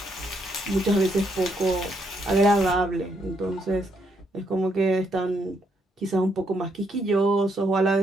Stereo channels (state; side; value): normal; both; correlation 0.75